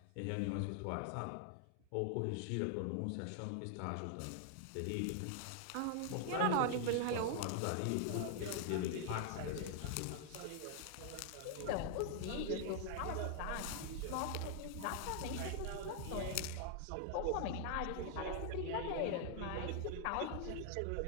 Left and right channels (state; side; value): different; both; correlation 0.00